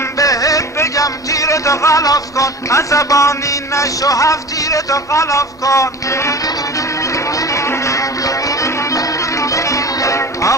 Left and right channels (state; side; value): normal; both; correlation 0.36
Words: بهت بگم تیرتو غلاف کن، عصبانی نشو، هفت تیرتو غلاف کن.